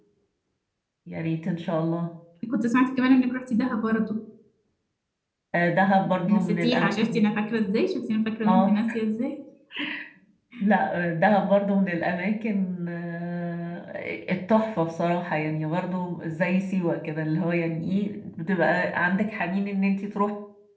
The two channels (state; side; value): identical; both; correlation 1.00